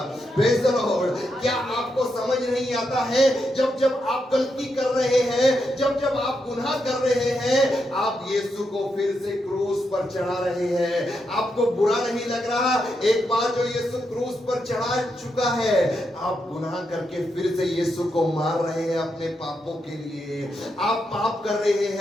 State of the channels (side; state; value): both; normal; correlation 0.83